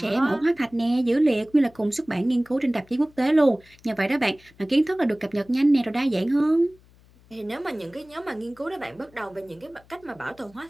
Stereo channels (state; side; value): noise; left; hum, 28 dB below the sound